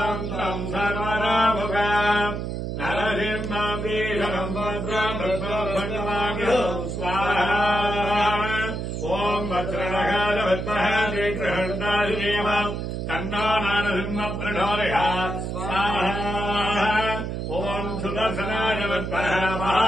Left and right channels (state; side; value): noise; right; hum, 4 dB below the sound